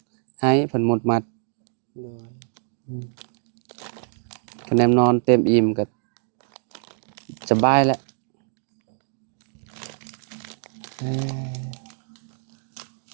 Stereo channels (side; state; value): left; silent; 62 dB below the other